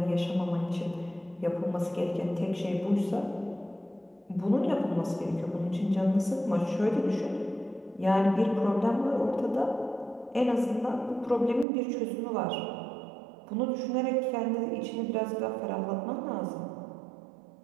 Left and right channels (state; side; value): drops out; left; at 11.7 s